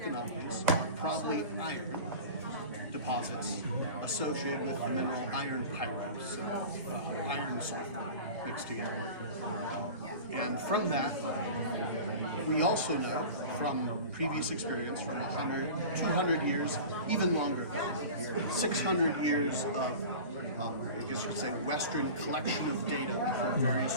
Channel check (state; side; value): inverted; both; correlation -0.35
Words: anomalies are probably iron deposits associated with the mineral iron pyrite, so iron sulfur mixed together. And from that, we also know from previous experience from 100, 200 years, even longer, 600 years of, I guess you could say, Western collection of data from